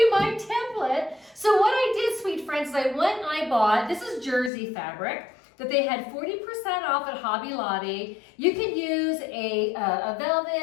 my template. So what I did, sweet friends, is I went and I bought, this is jersey fabric that they had 40% off at Hobby Lobby. You can use a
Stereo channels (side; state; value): right; drops out; at 4.5 s